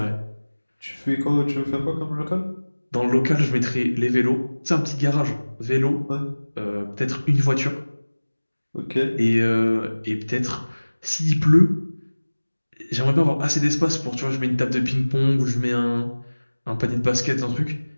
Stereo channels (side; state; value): both; inverted; correlation -1.00